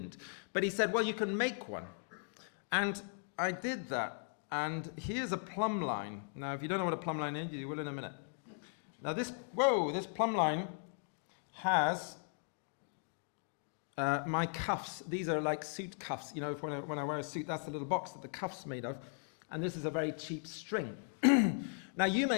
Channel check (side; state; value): right; silent; 53 dB below the other